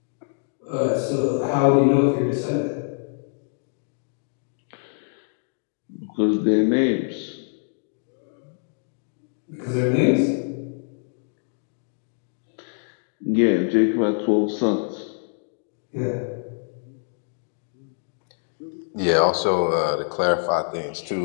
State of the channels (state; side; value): silent; right; digital silence